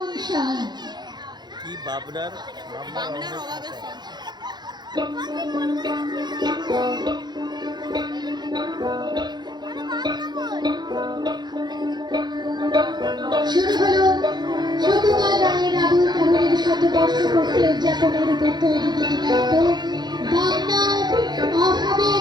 সংসার কি বাবনার অভাবের সংসার। শুরু হলো সুকুমার রায়ের আবুল তাহেরের শতবর্ষ পূর্তি উদযাপনের উপর তৈরি গীতিনাট্য বাংলার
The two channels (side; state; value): left; late; 0.21 ms